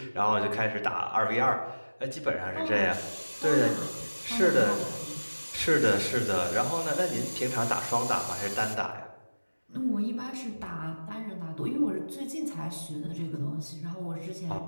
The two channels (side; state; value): both; inverted; correlation -1.00